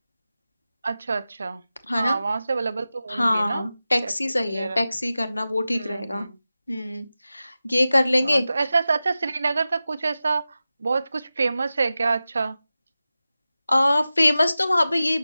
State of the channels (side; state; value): both; inverted; correlation -0.94